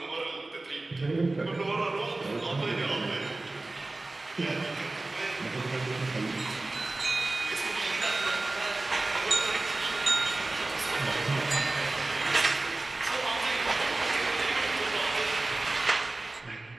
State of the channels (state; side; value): quieter; left; 3.0 dB